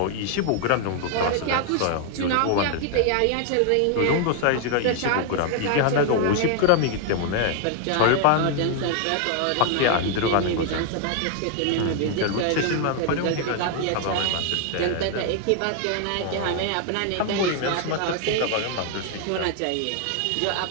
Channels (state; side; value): different; both; correlation 0.00